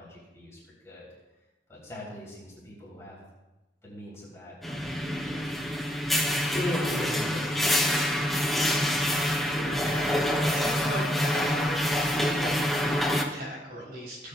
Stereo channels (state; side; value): normal; both; correlation 0.74